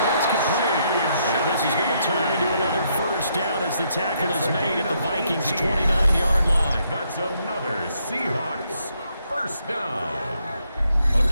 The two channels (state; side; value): inverted; both; correlation -0.75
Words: Complete. And this is going to turn into another 1st down as the tackle is made at the Vikings' 29-yard line. That's another Seahawks 1st down. A